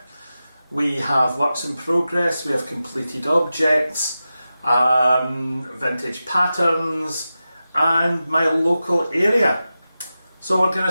We have works in progress, we have completed objects, vintage patterns, and my local area. So we're going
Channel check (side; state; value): both; inverted; correlation -0.93